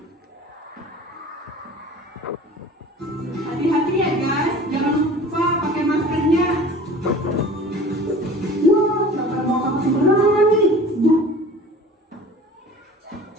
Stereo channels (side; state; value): both; normal; correlation 0.43